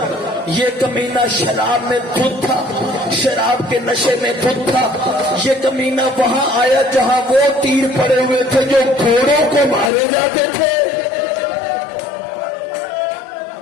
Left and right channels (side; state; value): right; drops out; at 9.9 s